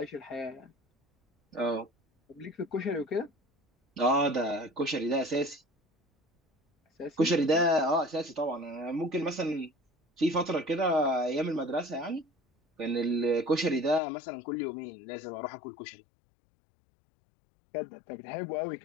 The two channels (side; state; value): right; drops out; at 14.0 s